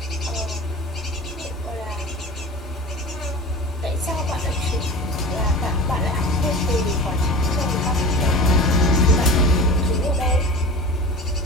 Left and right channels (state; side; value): normal; both; correlation 0.35